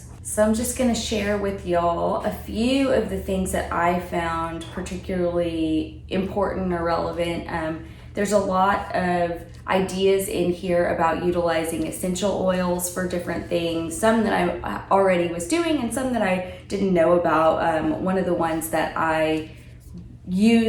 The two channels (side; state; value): both; identical; correlation 1.00